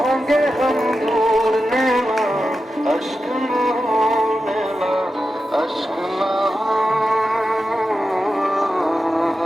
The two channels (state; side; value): normal; both; correlation 0.91